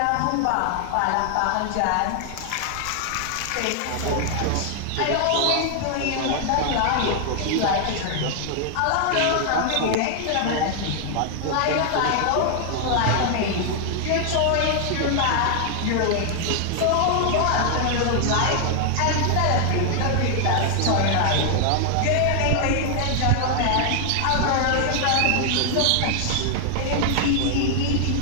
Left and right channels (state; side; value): different; both; correlation 0.00